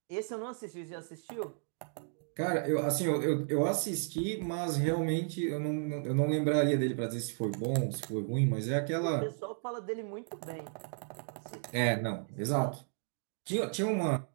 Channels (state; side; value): silent; left; digital silence